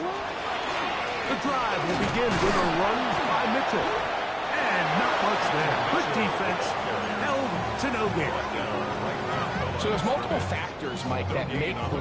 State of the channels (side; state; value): both; identical; correlation 1.00